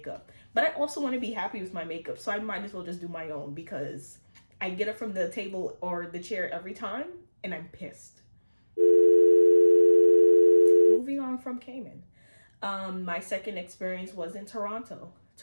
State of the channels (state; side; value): inverted; both; correlation -1.00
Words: But I also want to be happy with my makeup, so I might as well just do my own because I get it from the table or the chair every time, and I'm pissed. Moving on from Cayman. My second experience was in Toronto.